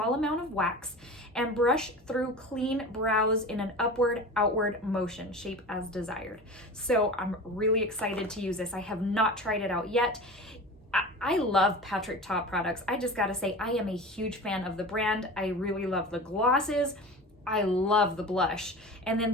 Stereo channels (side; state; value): both; normal; correlation 0.33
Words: amount of wax, and brush through clean brows in an upward-outward motion, shape as desired. So I'm really excited to use this. I have not tried it out yet. I love Patrick Ta products. I just gotta say, I am a huge fan of the brand. I really love the glosses. I love the blush, and then